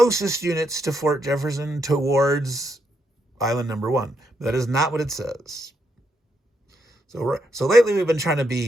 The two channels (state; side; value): normal; both; correlation 0.79